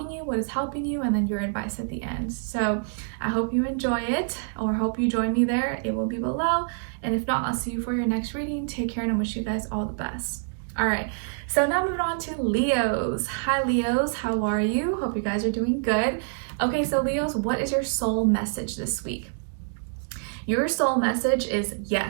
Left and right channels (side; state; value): left; silent; digital silence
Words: you, what is helping you, and then your advice at the end. So I hope you enjoy it, or hope you join me there. It will be below, and if not, I'll see you for your next reading. Take care, and I wish you guys all the best. All right, so now moving on to Leos. Hi Leos, how are you? Hope you guys are doing good. Okay, so Leos, what is your soul message this week? Your soul message is